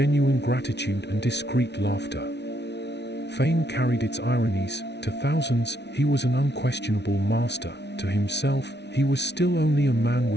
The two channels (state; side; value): late; right; 0.50 ms